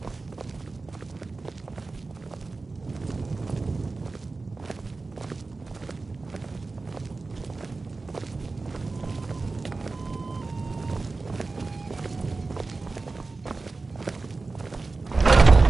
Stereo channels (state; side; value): quieter; left; 3.7 dB